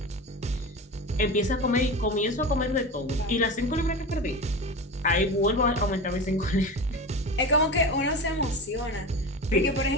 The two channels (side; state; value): both; normal; correlation 0.28